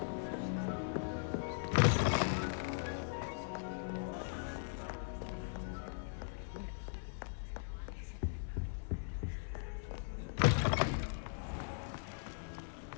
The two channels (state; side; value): silent; right; 51 dB below the other